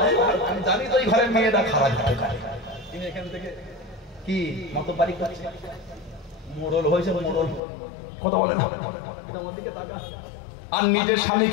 আমি জানি তো এই ঘরের মেয়েরা খারাপ হতে পারে। তিনি এখান থেকে কি মত বাড়ি করছে, মোড়ল হয়েছে, মোড়ল কথা বলে না, আমার দিকে তাকা। আর নিজের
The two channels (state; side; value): drops out; right; at 7.6 s